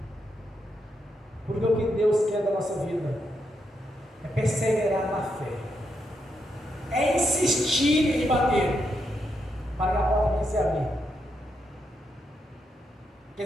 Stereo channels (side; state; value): both; normal; correlation 0.81